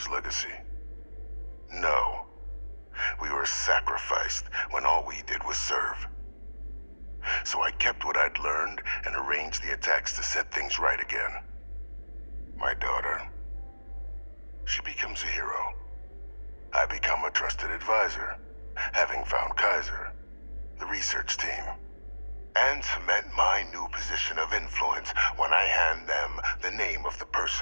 legacy? No. We were sacrificed when all we did was serve. So I kept what I'd learned and arranged the attacks to set things right again. My daughter, she becomes a hero. I become a trusted advisor, having found Kaiser, the research team, and cement my new position of influence when I hand them the name of the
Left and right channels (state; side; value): inverted; both; correlation -1.00